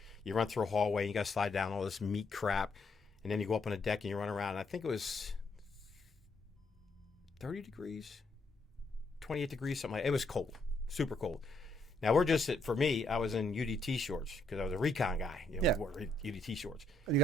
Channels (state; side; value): normal; both; correlation 0.73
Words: You run through a hallway. And you got to slide down all this meat crap, and then you go up on the deck and you run around. And I think it was 30 degrees, 28 degrees, something like that. It was cold, super cold. Now, for me, I was in UDT shorts because I was a recon guy. We wore UDT shorts. And you